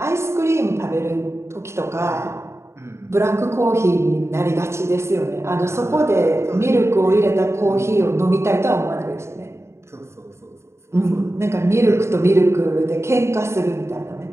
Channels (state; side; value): late; left; 0.13 ms